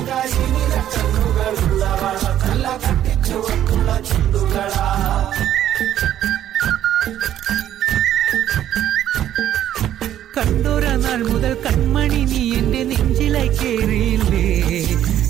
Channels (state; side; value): quieter; left; 11.4 dB